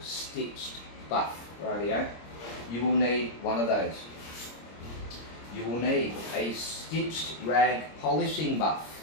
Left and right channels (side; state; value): right; late; 26 ms